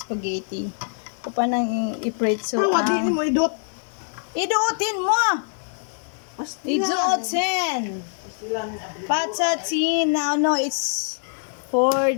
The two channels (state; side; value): silent; right; digital silence